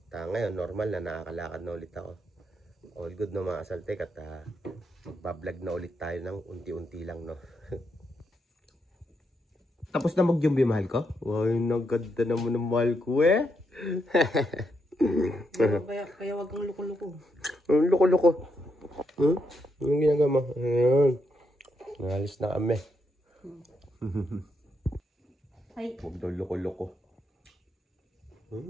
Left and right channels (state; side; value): normal; both; correlation 0.80